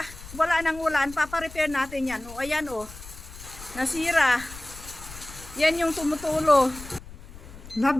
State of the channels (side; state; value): left; noise; rumble, 16 dB below the sound